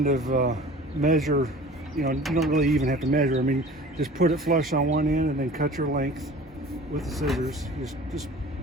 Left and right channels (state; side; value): normal; both; correlation 0.43